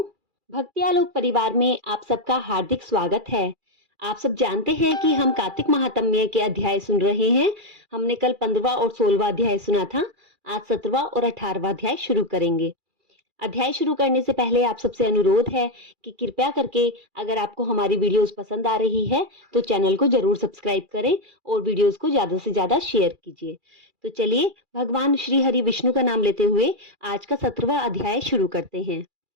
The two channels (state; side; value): late; left; 2.3 ms